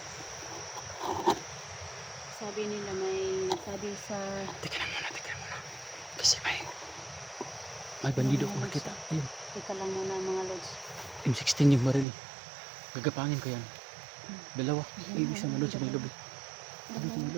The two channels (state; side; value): drops out; left; at 12.1 s